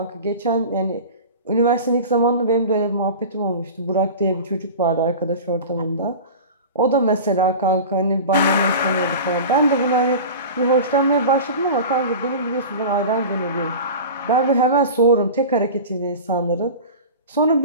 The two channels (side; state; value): both; inverted; correlation -0.33